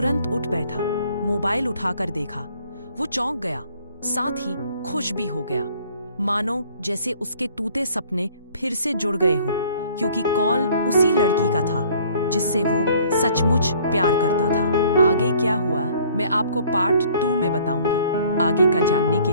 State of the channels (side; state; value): both; inverted; correlation -0.56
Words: उठ बैठा, मोबाइल उठाकर देखा। वो चौंक गया, साथ ही खुश भी हो गया, मानो जैसे उसके टूटे सपने फिर से जुड़ गए हो, क्योंकि कॉल उसी लड़की का था जिससे वो सचमुच प्यार करता था। आगे क्या हुआ मैं आपको पार्ट 2 में बताऊंगी। आगे का जानने के